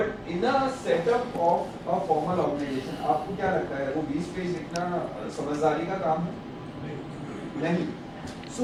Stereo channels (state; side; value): identical; both; correlation 1.00